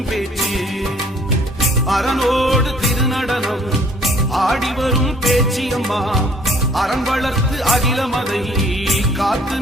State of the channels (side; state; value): both; normal; correlation 0.58